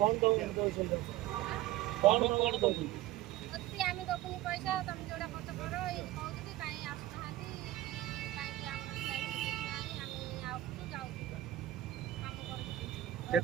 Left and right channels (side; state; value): left; quieter; 14.6 dB